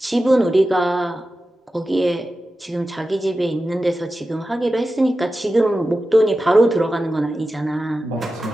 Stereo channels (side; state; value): both; normal; correlation 0.93